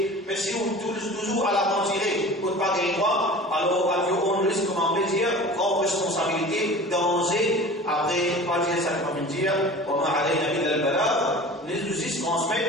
Mais si on toujours à la tirer pour ne pas gagner droit, alors on risque, comment on peut dire, grande responsabilité, danger, après, pas dire ça comme dire, on a allé à la balade, les outils se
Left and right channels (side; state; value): both; normal; correlation 0.39